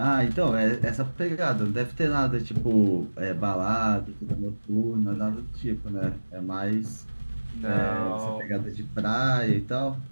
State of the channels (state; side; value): inverted; both; correlation -1.00